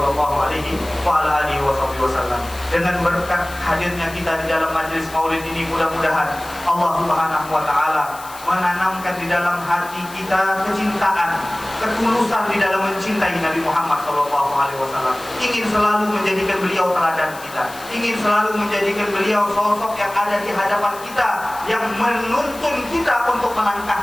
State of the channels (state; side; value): noise; left; hiss, 17 dB below the sound